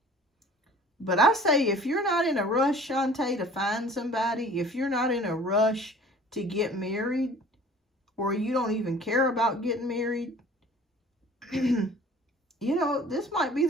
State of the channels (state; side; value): normal; both; correlation 0.48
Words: But I say, if you're not in a rush, Shantae, to find somebody, if you're not in a rush to get married, or you don't even care about getting married, you know, this might be